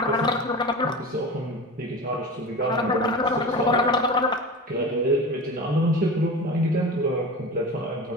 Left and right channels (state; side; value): normal; both; correlation 0.31